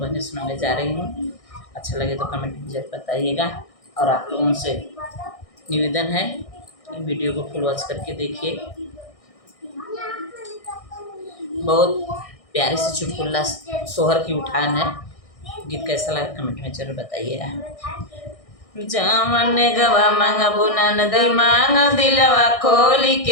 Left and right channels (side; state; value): right; late; 1.6 ms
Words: सुनाने जा रही हूँ। अच्छा लगे तो कमेंट में जरूर बताइएगा और आप लोगों से निवेदन है कि वीडियो को फुल वॉच करके देखिए। बहुत प्यारे से चुटकुला सोहर की उठान है। गीत कैसा लगा कमेंट में जरूर बताइएगा। जावन गवा मंगबुना नदी मांग दिलवा खोल